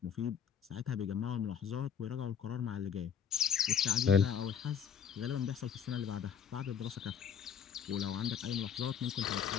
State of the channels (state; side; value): quieter; right; 7.6 dB